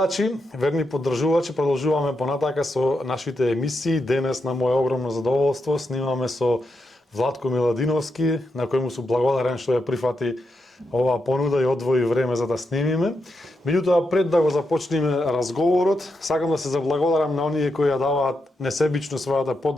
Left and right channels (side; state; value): both; normal; correlation 0.84